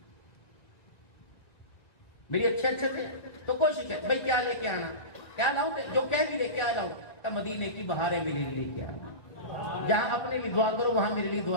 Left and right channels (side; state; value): right; late; 1.8 ms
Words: میری اچھے تھے تو کوشش ہے بھائی کیا لے کے آنا، کیا لاؤں، جو کہہ بھی لے کیا لاؤں. تب مدینے کی بہاریں میرے لیے لے کے آنا، جہاں اپنے لیے دعا کرو وہاں میرے لیے